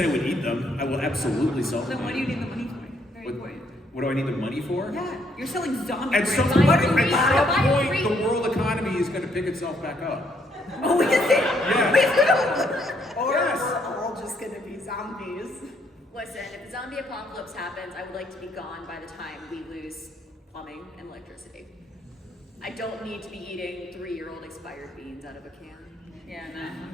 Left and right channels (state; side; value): normal; both; correlation 0.70